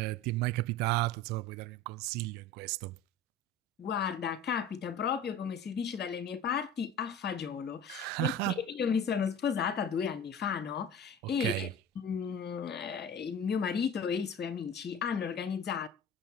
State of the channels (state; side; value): normal; both; correlation 0.37